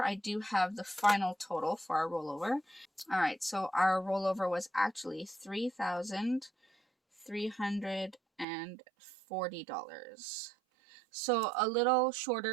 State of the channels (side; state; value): left; drops out; at 8.5 s